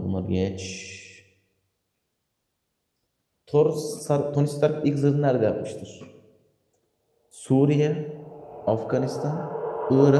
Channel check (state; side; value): identical; both; correlation 1.00